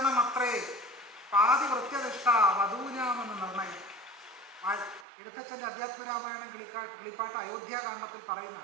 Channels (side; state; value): left; drops out; at 5.1 s